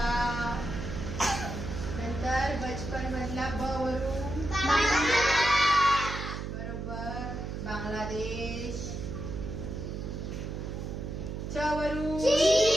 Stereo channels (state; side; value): noise; right; hum, 5 dB below the sound